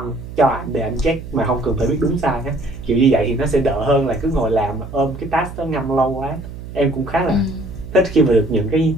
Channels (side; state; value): right; noise; hum, 12 dB below the sound